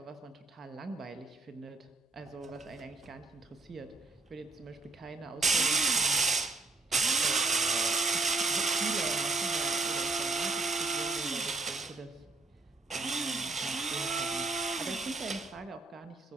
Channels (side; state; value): left; quieter; 3.6 dB